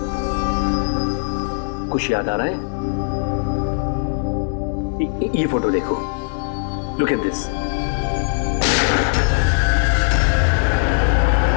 कुछ याद आ रहा है? ये फोटो देखो, लुक एट दिस।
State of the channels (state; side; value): silent; right; digital silence